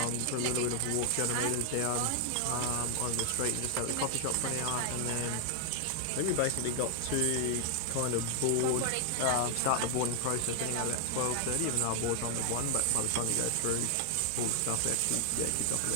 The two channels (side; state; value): both; different; correlation 0.00